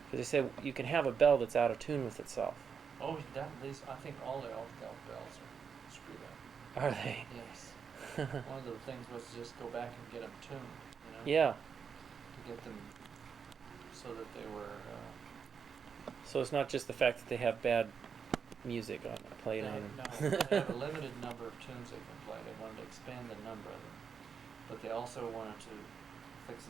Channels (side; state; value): left; quieter; 6.5 dB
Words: Because they say you can have a bell that's out of tune with itself. Oh, these, I think all the elk bells are screwed up. Are they? Yes. One of the things was to just go back and get them tuned, you know? Yeah. To get them so that they were, So it's not just the fact that they have bad music on played on them. no, they have a limited number of tunes they can play. They wanted to expand the number of them. But they also wanted to fix